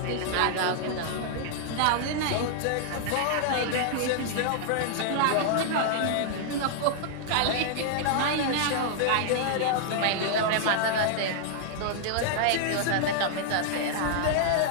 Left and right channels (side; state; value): both; different; correlation -0.01